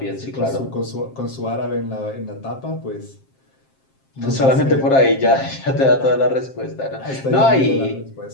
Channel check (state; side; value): late; right; 7.5 ms